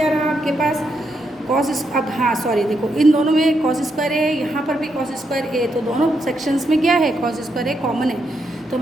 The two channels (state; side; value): normal; both; correlation 0.80